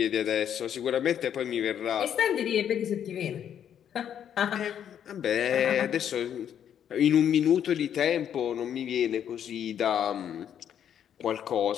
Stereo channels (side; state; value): right; quieter; 9.3 dB